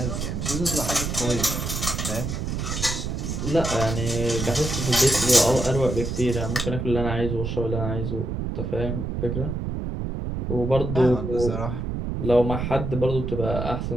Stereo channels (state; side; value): noise; right; rumble, 3 dB below the sound